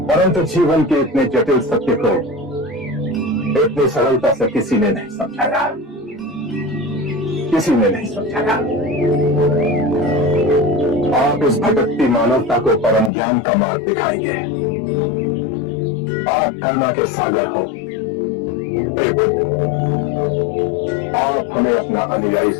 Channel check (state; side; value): drops out; right; at 13.1 s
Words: परंतु जीवन के इतने जटिल सत्य को इतनी सरलता से किसी ने नहीं समझाया, किसी ने नहीं समझाया। आप इस भटकती मानवता को परम ज्ञान का मार्ग दिखाएंगे। आप करुणा के सागर हो। हे बुद्ध, आप हमें अपना अनुयायी